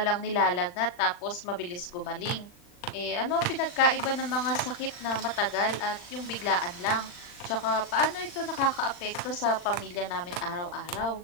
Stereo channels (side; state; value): right; late; 40 ms